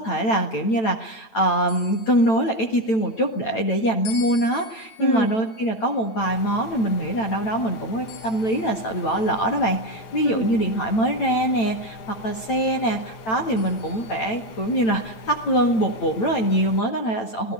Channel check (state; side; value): late; right; 9.0 ms